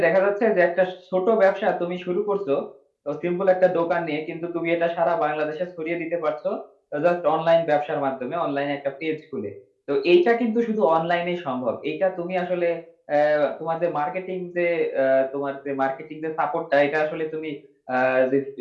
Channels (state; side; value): identical; both; correlation 1.00